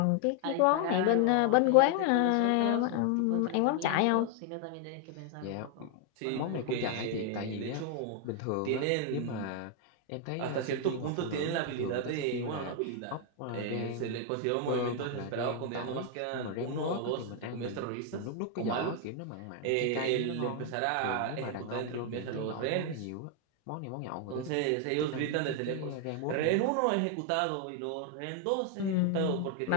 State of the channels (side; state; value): both; different; correlation 0.00